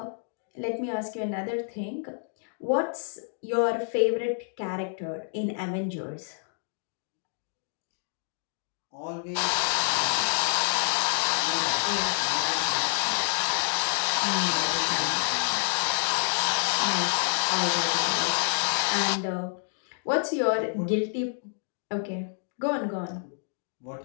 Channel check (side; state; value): right; silent; digital silence